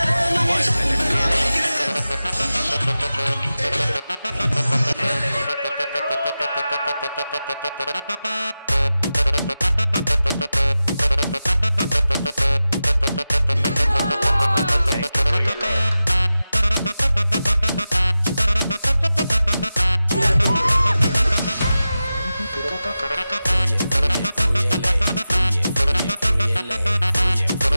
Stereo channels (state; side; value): inverted; both; correlation -0.94